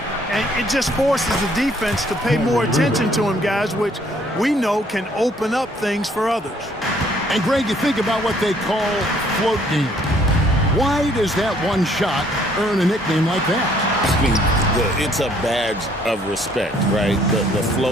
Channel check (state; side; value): normal; both; correlation 0.63